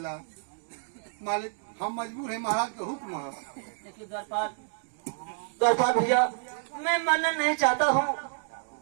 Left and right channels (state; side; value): silent; left; digital silence